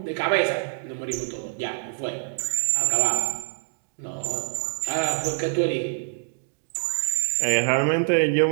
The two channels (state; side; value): silent; left; 61 dB below the other